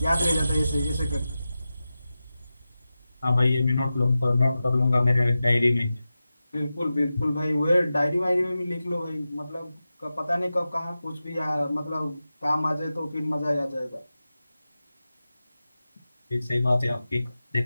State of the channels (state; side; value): inverted; both; correlation -0.93